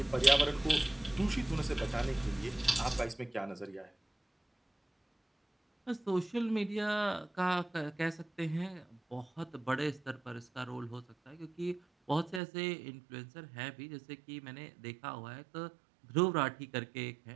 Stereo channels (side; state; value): left; drops out; at 12.4 s